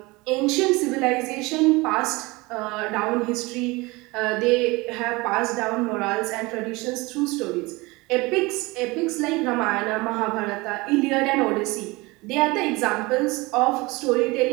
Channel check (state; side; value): quieter; left; 23.4 dB